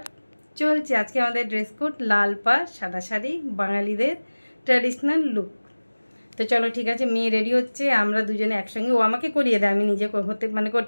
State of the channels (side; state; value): both; inverted; correlation -1.00